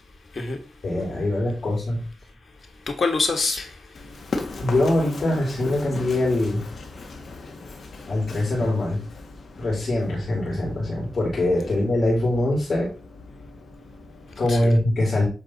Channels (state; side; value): normal; both; correlation 0.91